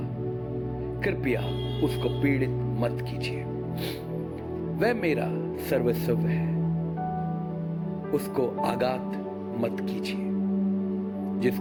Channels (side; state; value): both; identical; correlation 1.00